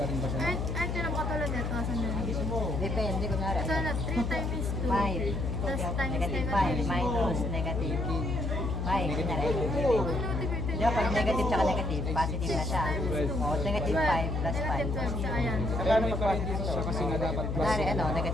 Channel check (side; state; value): left; noise; hum, 1 dB below the sound